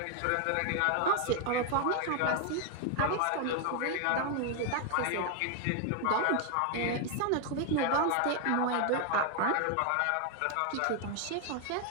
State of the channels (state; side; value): different; both; correlation 0.00